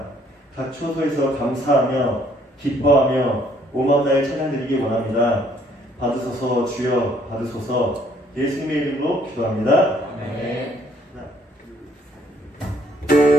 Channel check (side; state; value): both; normal; correlation 0.64